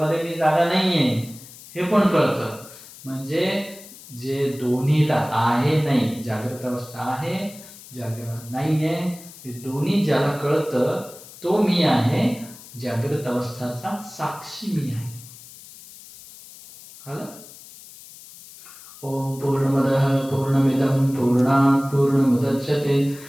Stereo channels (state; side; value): noise; left; hiss, 18 dB below the sound